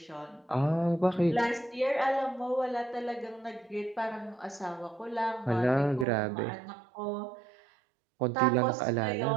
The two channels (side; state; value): left; drops out; at 6.1 s